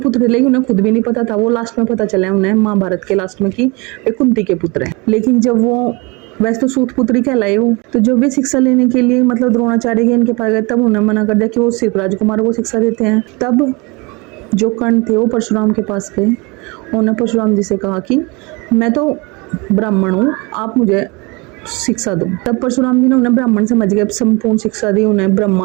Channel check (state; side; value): quieter; left; 27.1 dB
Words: थे, लेकिन उन्हें खुद भी नहीं पता था, वो लास्ट में पता चला उन्हें महाभारत के लास्ट में कि वे कुंती के पुत्र हैं। लेकिन जब वो वैसे तो सूत पुत्री कहलाए हो, तो जब वे शिक्षा लेने के लिए मतलब द्रोणाचार्य के इनके पास गए तब उन्हें मना कर दिया कि वो सिर्फ राजकुमारों को शिक्षा देते हैं। तब जो कर्ण थे वो परशुराम के पास गए, उन्होंने परशुराम जी से कहा कि मैं तो ब्राह्मण हूँ, आप मुझे शिक्षा दो। तब परशुराम जी ने उन्हें ब्राह्मण समझ गए, संपूर्ण शिक्षा दी, उन्हें